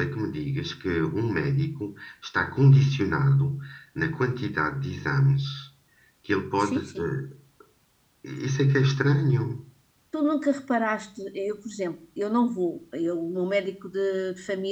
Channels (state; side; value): identical; both; correlation 1.00